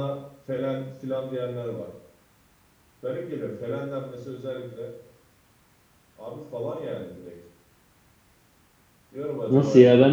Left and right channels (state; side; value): identical; both; correlation 1.00